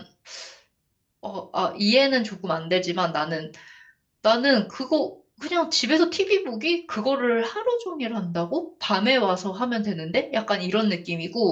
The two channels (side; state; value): both; identical; correlation 1.00